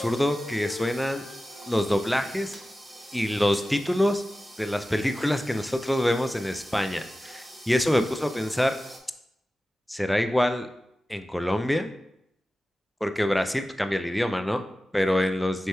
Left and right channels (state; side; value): normal; both; correlation 0.95